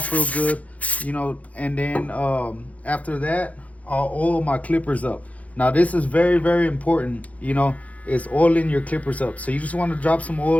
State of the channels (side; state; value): right; late; 0.068 ms